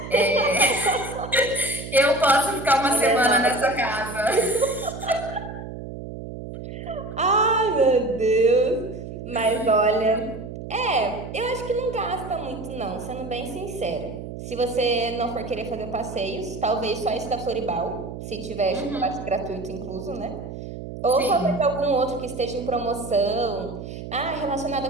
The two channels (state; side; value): noise; right; hum, 10 dB below the sound